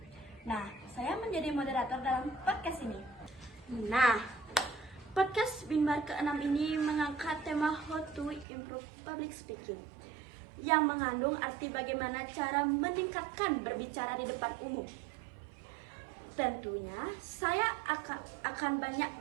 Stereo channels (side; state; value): left; drops out; at 8.5 s